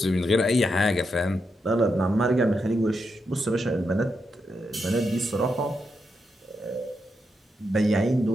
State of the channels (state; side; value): normal; both; correlation 0.84